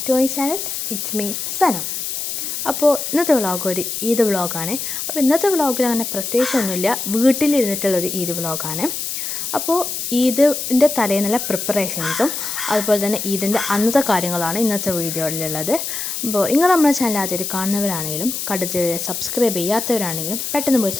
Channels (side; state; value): left; noise; hiss, 4 dB below the sound